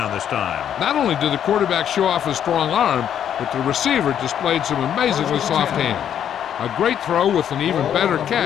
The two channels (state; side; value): quieter; right; 9.4 dB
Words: this time. Not only did the quarterback show off his strong arm, but the receiver displayed some amazingly soft hands. A great throw with an even better